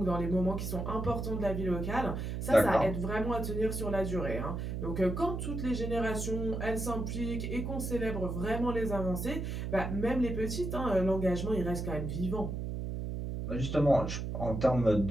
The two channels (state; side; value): noise; right; hum, 4 dB below the sound